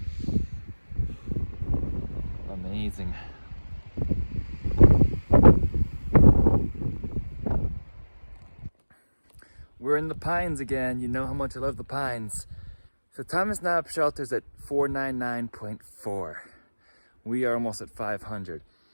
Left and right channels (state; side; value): inverted; both; correlation -1.00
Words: Amazing. We're in the Pines again. You know how much I love the Pines. So Thomas Knob shelter's at 499.4. We are almost at 500.